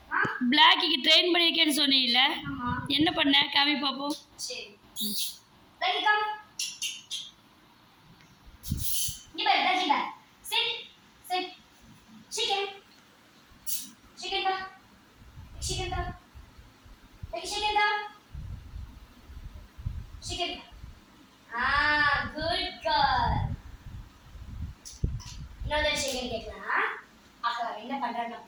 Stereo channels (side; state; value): both; identical; correlation 1.00